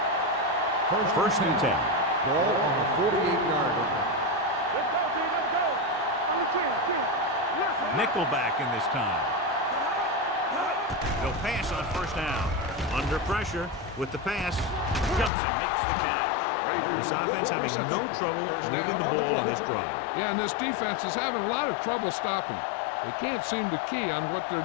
1st and 10. Ball on the 48-yard line. Let's go, D. Let's go. On the 10. Listen. Nickelback in this time. He'll pass on first down. Under pressure with the pass. Jumps and makes the catch. This offense having no trouble moving the ball on this drive. Yeah, and this defense is having a lot of trouble stopping it. They can't seem to key on what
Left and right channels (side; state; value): right; drops out; at 15.3 s